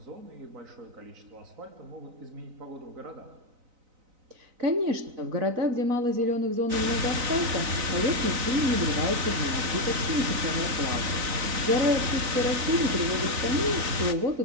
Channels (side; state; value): left; late; 4.0 ms